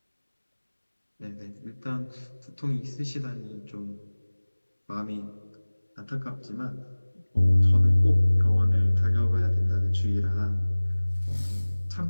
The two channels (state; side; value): inverted; both; correlation -1.00